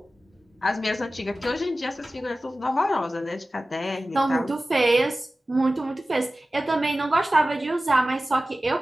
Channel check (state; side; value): normal; both; correlation 0.96